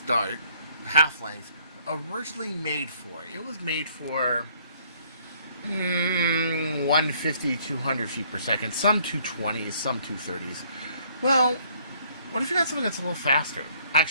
dart, half length, originally made for? It was made for 150, 200 feet per second, some 220s, some 230s. Well, what if you got something that's a little faster?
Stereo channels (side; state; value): both; inverted; correlation -0.63